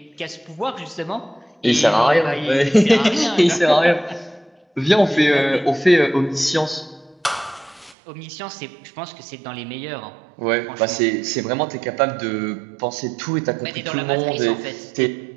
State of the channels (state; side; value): drops out; left; at 8.0 s